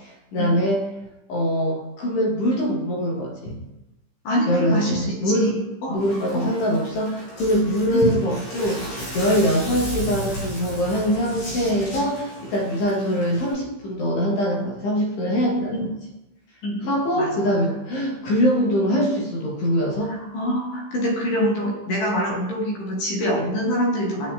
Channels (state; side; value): late; right; 15 ms